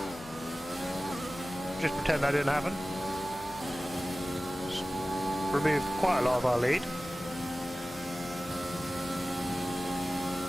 Just pretend that didn't happen. Just remove quite a lot of our lead.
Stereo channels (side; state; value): left; noise; hum, 22 dB below the sound